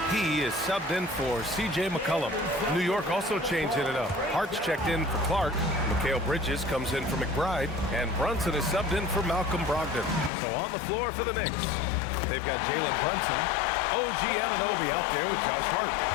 is subbed in for C.J. McCollum. New York also changing it up. Hart's checked in for Clark. Mikal Bridges comes in for McBride. And Brunson is subbed in for Malcolm Brogdon. So on the floor for the Knicks. They've got Jalen Brunson, OG Anunoby out there with Josh Hart.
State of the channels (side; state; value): right; drops out; at 10.3 s